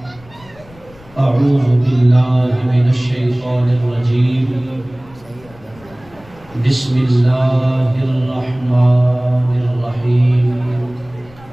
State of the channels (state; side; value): noise; left; rumble, 24 dB below the sound